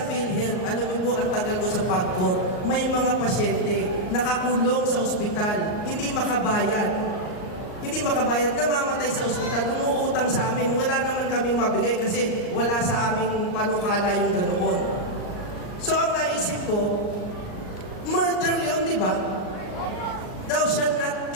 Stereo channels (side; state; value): right; late; 38 ms